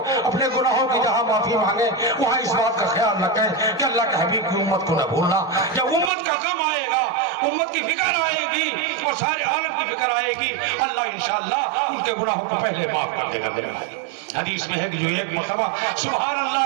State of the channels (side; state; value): left; drops out; at 6.1 s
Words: अपने गुनाहों की जहाँ माफी मांगे वहाँ इस बात का ख्याल रखें कि अल्लाह के हबीब की उम्मत को न भूलना। जब उम्मत का गम आएगा, उम्मत की फिक्र आएगी और सारे आलम की फिक्र आएगी, अल्लाह इंशाअल्लाह उनके गुनाहों को पहले माफ कर देगा मेरे भाई। हदीस में है कि जो एक मरतबा सुभान